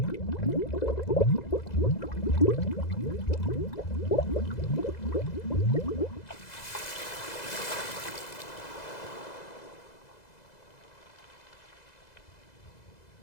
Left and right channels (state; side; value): late; right; 2.0 ms